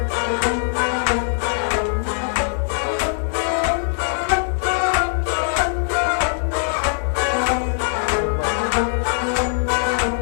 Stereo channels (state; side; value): silent; right; 57 dB below the other